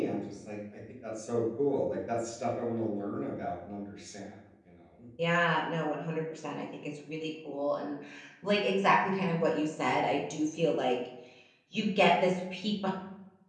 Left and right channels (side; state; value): both; identical; correlation 1.00